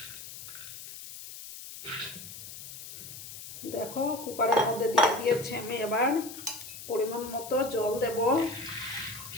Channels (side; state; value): left; noise; hiss, 12 dB below the sound